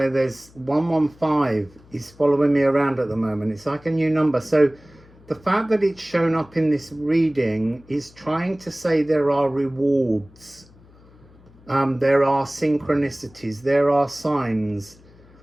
there's 115 is following me around at the moment. It's like a new number. So the fact that it's shown up in this reading is trying to say there are rewards. There are synchronicities. There are signs.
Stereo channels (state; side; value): noise; left; hum, 26 dB below the sound